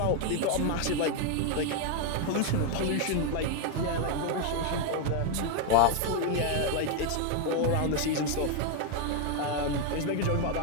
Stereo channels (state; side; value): different; both; correlation 0.00